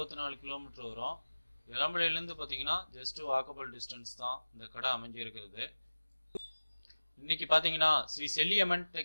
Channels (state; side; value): inverted; both; correlation -1.00